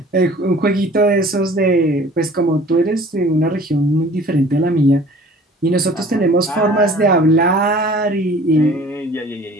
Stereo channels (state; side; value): normal; both; correlation 0.48